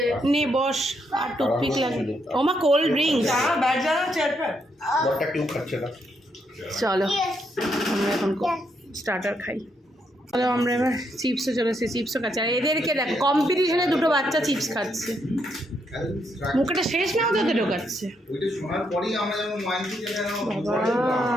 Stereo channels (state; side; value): normal; both; correlation 0.77